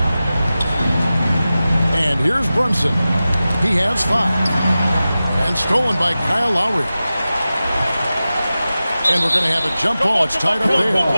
And here's Brunson. He has 5. And stolen by Kyle Lowry. And we're going to have a jump ball. It's tied up there.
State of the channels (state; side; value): inverted; both; correlation -0.95